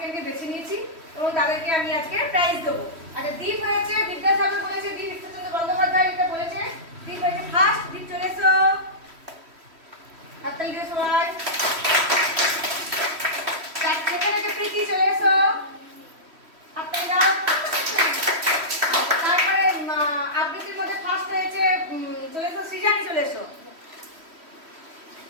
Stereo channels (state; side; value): late; left; 3.1 ms